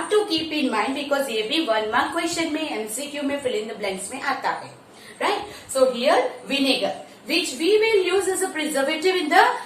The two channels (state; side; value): identical; both; correlation 1.00